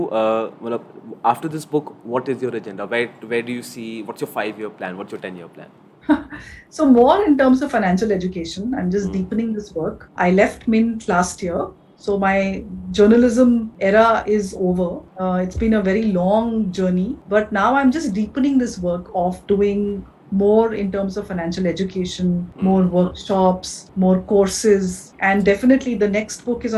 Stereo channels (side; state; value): both; identical; correlation 1.00